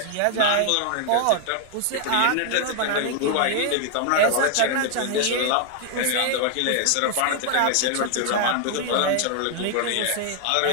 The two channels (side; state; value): both; different; correlation 0.00